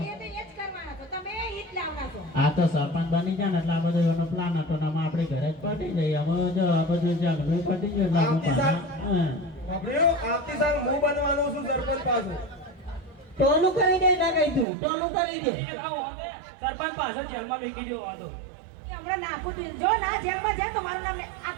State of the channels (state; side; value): drops out; left; at 14.7 s